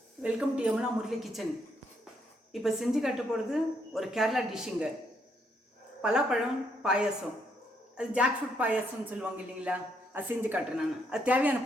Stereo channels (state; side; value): normal; both; correlation 0.74